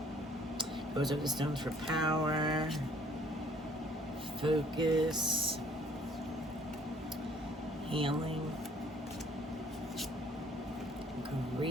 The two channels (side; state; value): both; normal; correlation 0.59